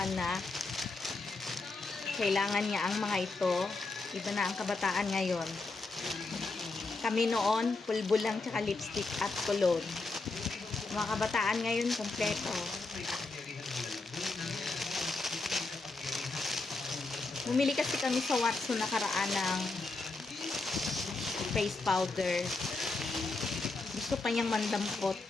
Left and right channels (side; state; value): right; quieter; 3.5 dB